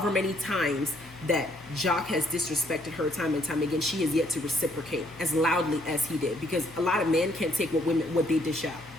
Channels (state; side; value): noise; left; hum, 23 dB below the sound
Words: many times that Jock has disrespected her time and time again, she has yet to reciprocate as loudly as he did. Because a lot of men can't take what they dish out.